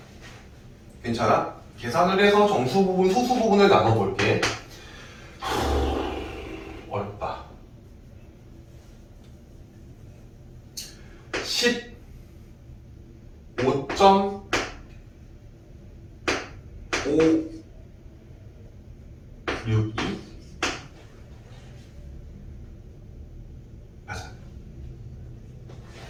괜찮아? 계산을 해서 정수 부분, 소수 부분을 나눠볼게. 어렵다. 15.562 맞아.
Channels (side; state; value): both; identical; correlation 1.00